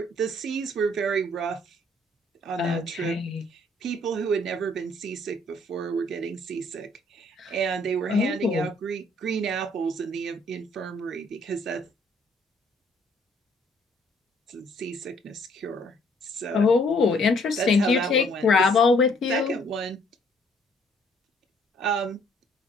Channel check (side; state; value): both; normal; correlation 0.63